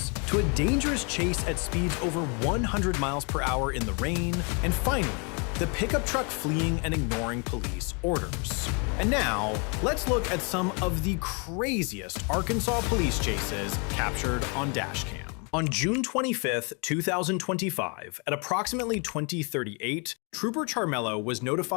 to a dangerous chase at speeds over 100 miles per hour in the rain, and finally, the pickup truck fleeing and ignoring police orders. And now, let's look at some of the craziest Arkansas police chases captured on Dashcam. On June 25, 2025, at approximately 20:38, Trooper Charmello was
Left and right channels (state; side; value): quieter; right; 35.1 dB